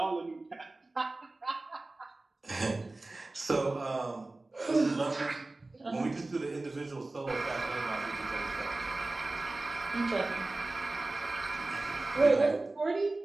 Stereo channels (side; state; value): left; quieter; 3.0 dB